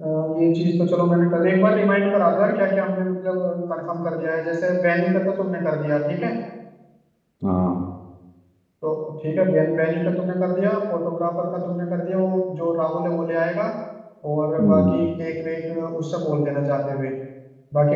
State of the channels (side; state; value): both; identical; correlation 1.00